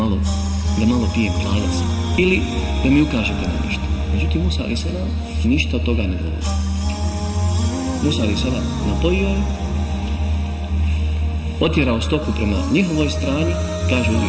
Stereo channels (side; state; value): both; identical; correlation 1.00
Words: pijem kladac, ili da mi ukažete na nešto. Međutim, Musa a.s. ništa od toga ne govori. Musa a.s. napojio je, otjerao stoku prema njihovoj strani, kaže